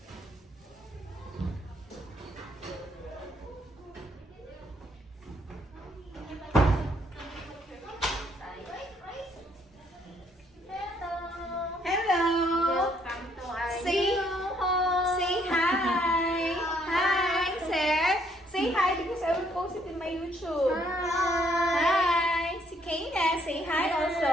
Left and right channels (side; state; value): both; normal; correlation 0.68